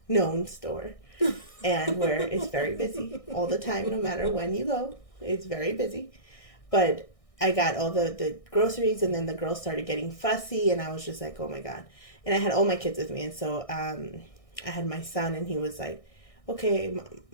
known store, and where it's very busy all the time, no matter when you go, it's very busy. But I got all the groceries, and then the girls started getting fussy, and I was just like, oh my God. And I had all my kids with me, and so I had my son, and he was like, okay,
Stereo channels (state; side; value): late; right; 1.6 ms